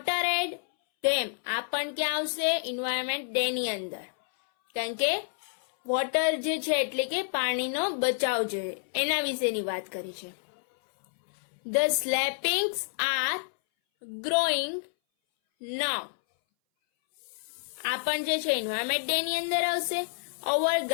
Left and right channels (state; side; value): silent; right; 59 dB below the other